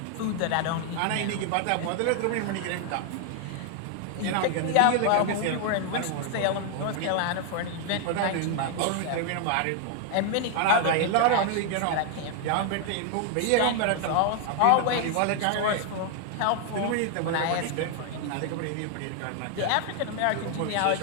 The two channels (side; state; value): both; different; correlation 0.00